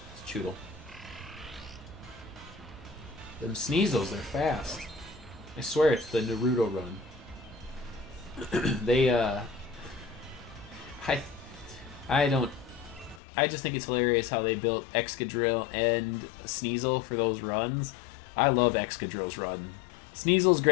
It's Chewtle. Them Sneasels, they're fast. I swear it's the Naruto run. They, I just think it's hilarious how they built Excadrill and Sneasel for those runs. I love Excadrill's run. Sneasel's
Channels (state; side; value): drops out; right; at 13.2 s